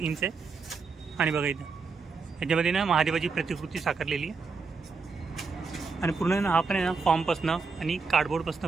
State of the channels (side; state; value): left; quieter; 4.7 dB